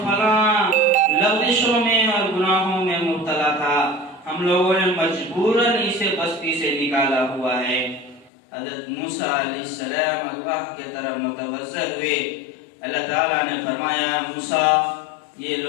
فلاں لغزشوں میں اور گناہوں میں مبتلا تھا، ہم لوگوں نے مجبوراً اسے بستی سے نکالا ہوا ہے۔ حضرت موسیٰ علیہ السلام اللہ کی طرف متوجہ ہوئے۔ اللہ تعالیٰ نے فرمایا موسیٰ، یہ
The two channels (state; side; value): drops out; right; at 8.3 s